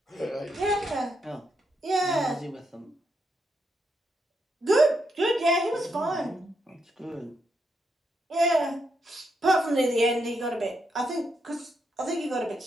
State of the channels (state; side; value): normal; both; correlation 0.80